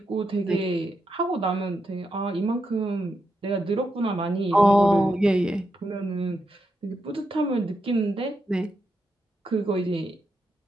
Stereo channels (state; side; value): normal; both; correlation 0.83